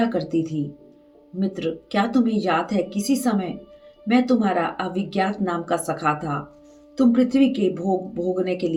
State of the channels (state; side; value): identical; both; correlation 1.00